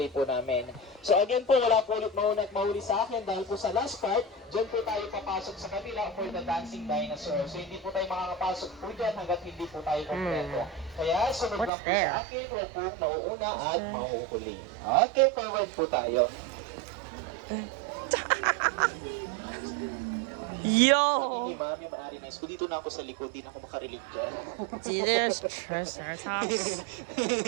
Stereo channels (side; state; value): left; drops out; at 11.7 s